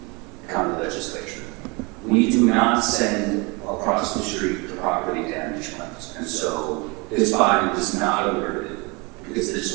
county legislature. We do not send across the street the property damage claims. And so this body was not alerted because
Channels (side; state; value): left; quieter; 28.2 dB